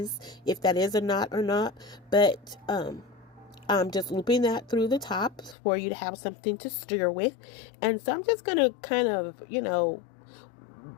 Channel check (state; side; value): drops out; right; at 5.6 s